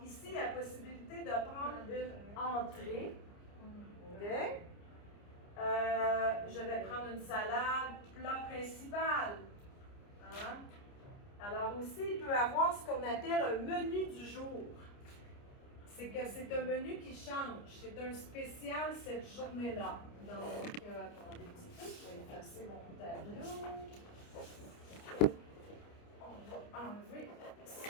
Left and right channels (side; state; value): right; late; 29 ms